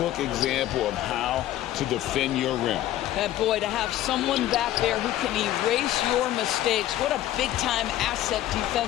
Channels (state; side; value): quieter; right; 13.6 dB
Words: example of how to defend your rim. And boy, to have someone back there who can erase your mistakes. What a big-time asset